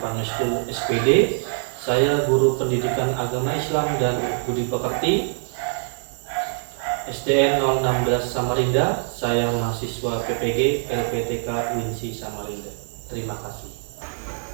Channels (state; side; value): silent; left; 60 dB below the other